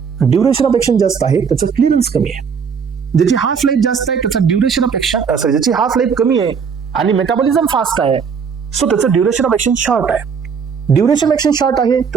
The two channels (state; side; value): quieter; left; 6.3 dB